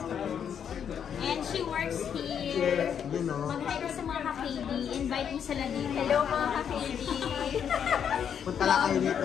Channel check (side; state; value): right; quieter; 8.1 dB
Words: And she works here. You know. Mag-hi ka sa mga ka-KD. Invite mo sila dito. Hello mga ka-KD. Punta lang kayo